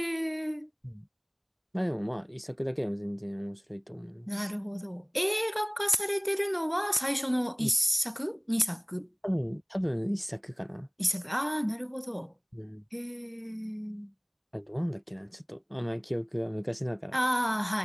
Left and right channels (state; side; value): identical; both; correlation 1.00